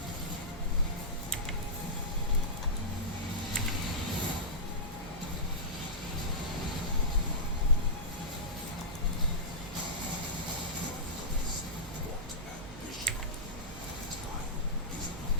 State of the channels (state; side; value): normal; both; correlation -0.14